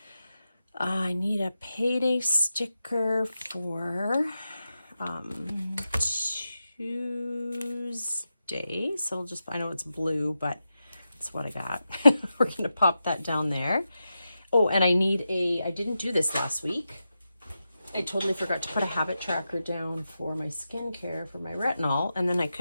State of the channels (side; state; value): both; inverted; correlation -0.90